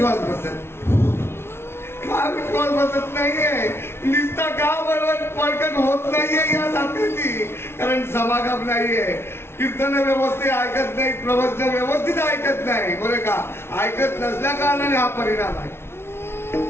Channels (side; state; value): right; late; 0.12 ms